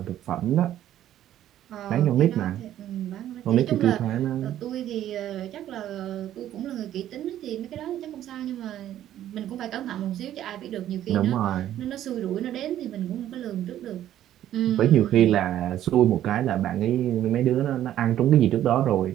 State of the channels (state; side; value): quieter; left; 12.0 dB